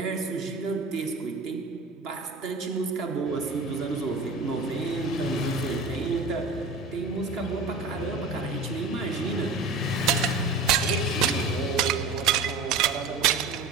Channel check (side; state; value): left; quieter; 3.7 dB